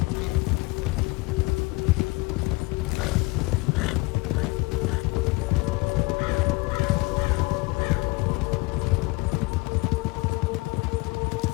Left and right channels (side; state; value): right; quieter; 24.8 dB